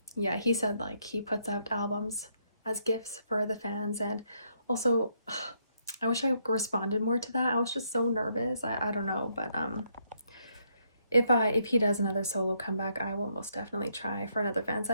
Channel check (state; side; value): inverted; both; correlation -0.74